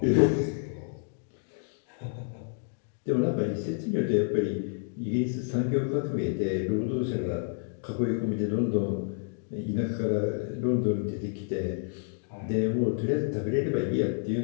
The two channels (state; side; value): silent; right; 58 dB below the other